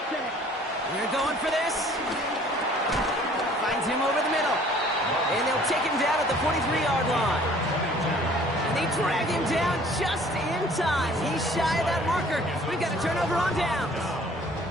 They're going for this. Finds him over the middle. And they'll take him down at the 43-yard line. They drag him down just in time. He's shy of that marker. We've got a turnover on downs.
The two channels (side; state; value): both; normal; correlation 0.54